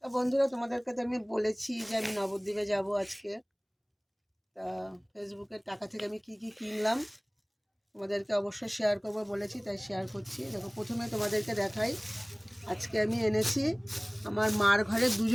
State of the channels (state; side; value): identical; both; correlation 1.00